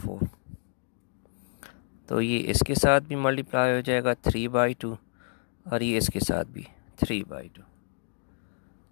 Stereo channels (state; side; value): silent; right; 58 dB below the other